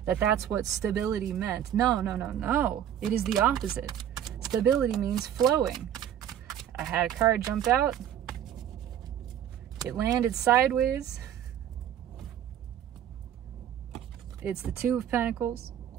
that's what stability meant. No. It is the opposite. Stability means flowing. I had a card jump out. It landed sideways. It's the Two of Pentacles.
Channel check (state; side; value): quieter; left; 10.2 dB